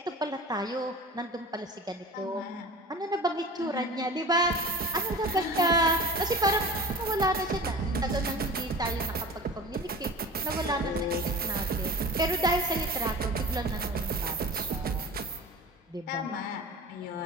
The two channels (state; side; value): normal; both; correlation 0.37